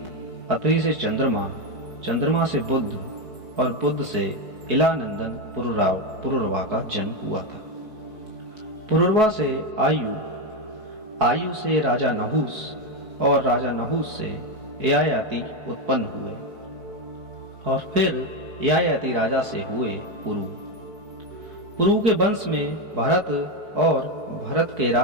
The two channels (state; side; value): late; left; 4.6 ms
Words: अत्रि से चंद्रमा, चंद्रमा से बुध और बुध से इलानंदन पुरुरवा का जन्म हुआ था। पुरुरवा से आयु, आयु से राजा नहुस और राजा नहुस से ययाति उत्पन्न हुए और फिर ययाति राजा से हुए पुरु। पुरु के वंश में भरत और भरत के